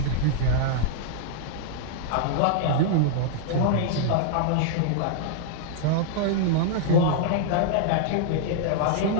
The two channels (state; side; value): different; both; correlation -0.01